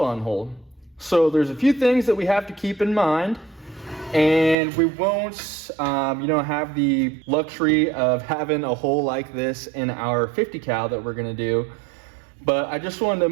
hole. So there's a few things that we have to keep in mind, And we won't, have the luxury of having a hole like this in our 50 cal that we're gonna do. But I just wanted to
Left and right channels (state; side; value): drops out; left; at 4.5 s